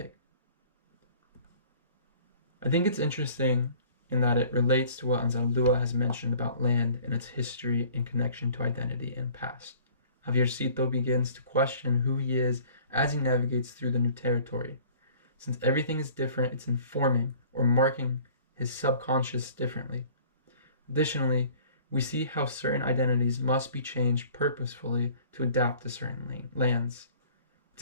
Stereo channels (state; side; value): inverted; both; correlation -0.50